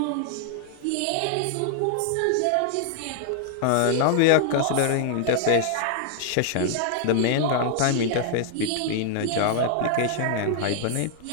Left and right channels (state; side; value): different; both; correlation 0.00